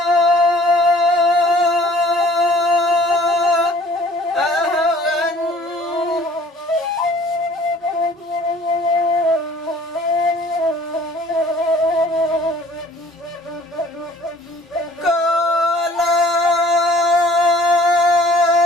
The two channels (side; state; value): both; normal; correlation 0.53